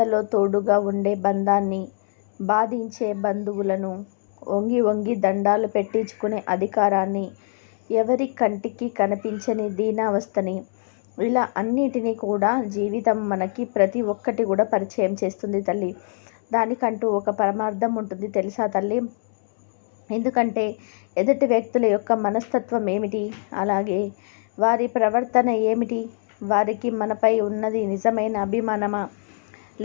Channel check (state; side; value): silent; right; 63 dB below the other